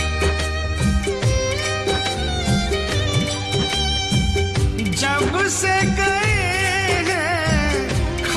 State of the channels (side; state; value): left; noise; rumble, 20 dB below the sound